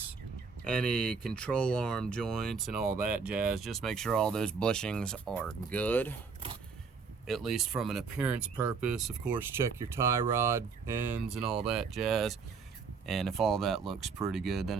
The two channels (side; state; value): left; quieter; 5.3 dB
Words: any control arm joints and all that jazz. Just make sure all those bushings are good, at least from an appearance purpose. Of course, check your tie rod ends and all that jazz. And if all that looks pretty good, then